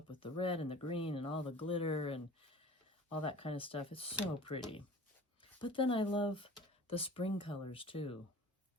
with the red and the green and all the glitter and all that kind of stuff, it's so pretty. But then I love the spring colors too.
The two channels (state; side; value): normal; both; correlation 0.42